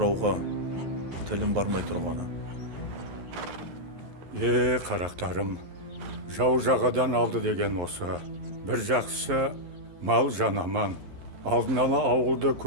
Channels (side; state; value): left; late; 11 ms